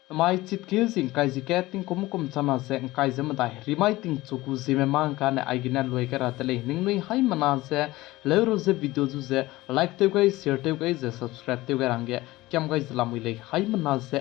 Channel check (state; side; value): quieter; right; 18.7 dB